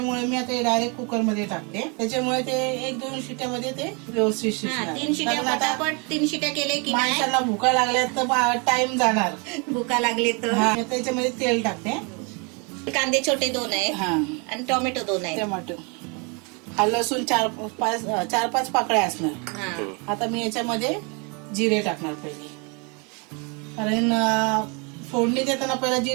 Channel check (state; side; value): quieter; left; 32.8 dB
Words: मी आता डायरेक्ट कुकर मध्ये टाकते. त्याच्यामुळे ते 1-2 शिट्यामध्ये ते व्यवस्थित शिजणार. 3 शिट्या पटापट 3 शिट्या केले की माणसाला भुका लागल्या तर टाइम जाणार. भुका लागले तर त्याच्यामध्ये तेल टाकते. कांदे छोटे 2 आहे आणि टोमॅटो 2 आहे. टोमॅटो, हा लसूण 4-5 पाकळ्या असणार. आता मी याच्यामध्ये जिरे टाकणार पहिले, कारण फोडणी देताना पहिला